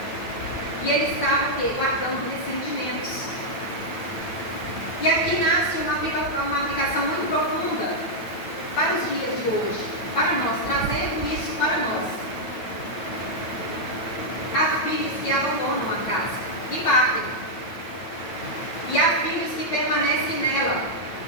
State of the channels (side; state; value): right; late; 9.1 ms